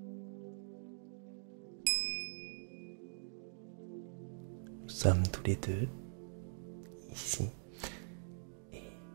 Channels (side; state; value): left; silent; digital silence